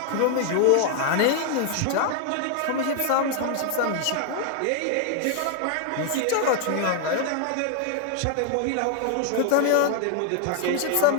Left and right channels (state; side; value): different; both; correlation 0.00